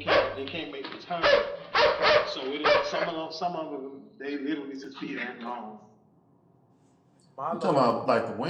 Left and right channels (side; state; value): both; identical; correlation 1.00